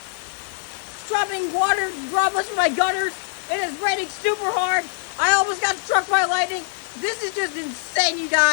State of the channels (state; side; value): silent; right; digital silence